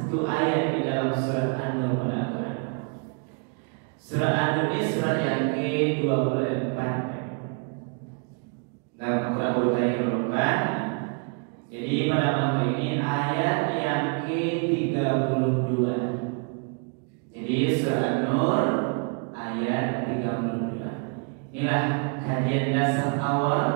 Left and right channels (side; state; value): left; quieter; 37.6 dB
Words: ayat di dalam surat An-Nur pada Al-Quran. Surat An-Nur ini surat yang ke-24 dalam Al-Quran urutan yang ke-24. Jadi pada malam ini ayat yang ke-32. Jadi surat An-Nur ayat 32. Inilah kajian dasar awal